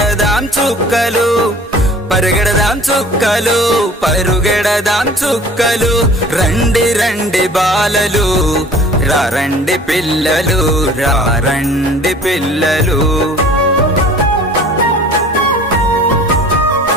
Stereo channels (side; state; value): both; normal; correlation 0.47